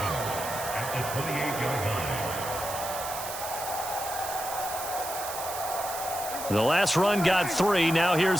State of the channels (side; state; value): right; noise; hiss, 8 dB below the sound